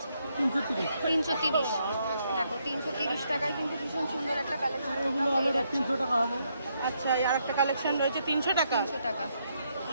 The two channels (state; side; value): inverted; both; correlation -0.76